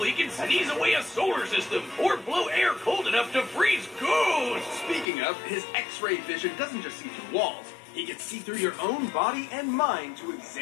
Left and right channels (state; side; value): drops out; right; at 5.1 s